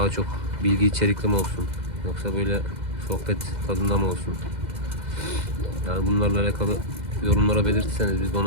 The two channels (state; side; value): late; left; 2.0 ms